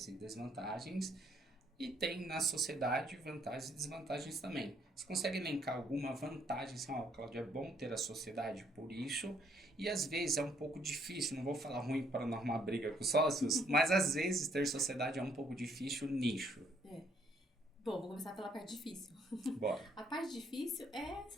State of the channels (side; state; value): both; normal; correlation 0.68